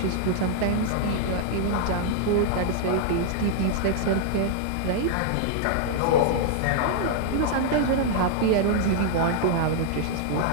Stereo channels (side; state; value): both; different; correlation 0.00